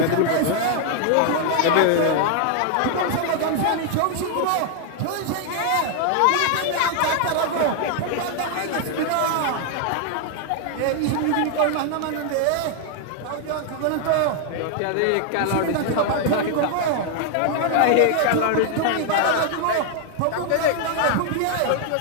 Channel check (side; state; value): both; different; correlation 0.00